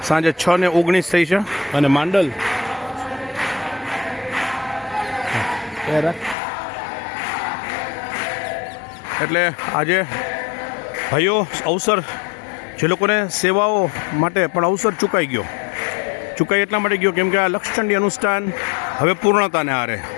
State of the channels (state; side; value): drops out; right; at 6.4 s